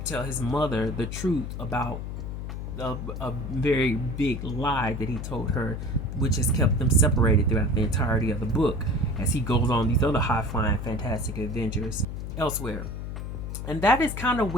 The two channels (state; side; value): noise; left; hum, 6 dB below the sound